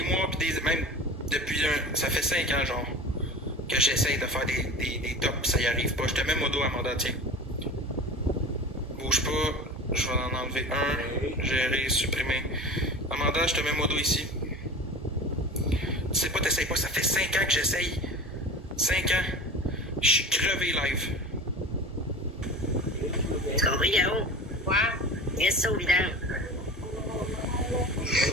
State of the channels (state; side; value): normal; both; correlation 0.33